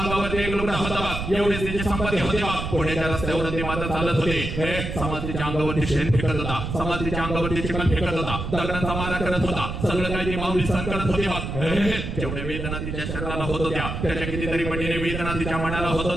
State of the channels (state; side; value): noise; right; rumble, 5 dB below the sound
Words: 1 रुपया होता बघ. एवढीच तिची संपत्ती होती बघ. पुण्याच्या रस्त्यावरून ती माता चालत होती. समाधीच्या अंगावरती शेण फेकत होता, समाधीच्या अंगावरती चिकन फेकत होता, दगडांचा मारा करत होता. सगळं काही ती माऊली सहन करत होती बघ. जेवढे वेदना तिच्या शरीराला होत होत्या त्याच्या कितीतरी पटीने वेदना तिच्या मनाला होत